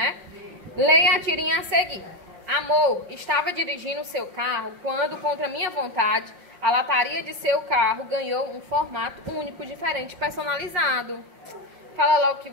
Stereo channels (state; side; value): late; left; 5.6 ms